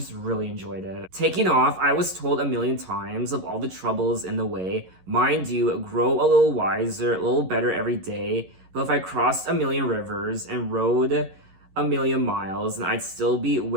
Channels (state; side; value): late; left; 11 ms